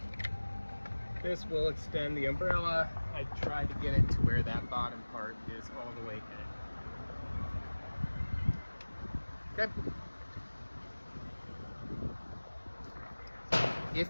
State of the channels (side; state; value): both; inverted; correlation -1.00